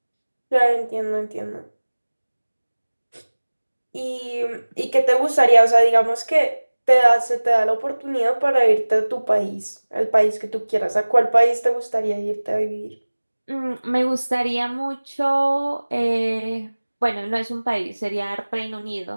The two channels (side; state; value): both; inverted; correlation -1.00